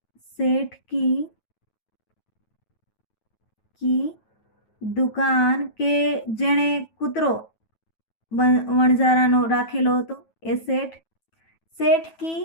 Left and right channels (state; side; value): late; right; 9.2 ms